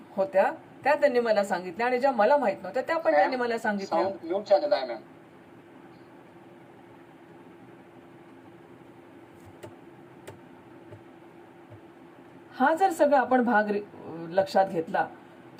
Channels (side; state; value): both; identical; correlation 1.00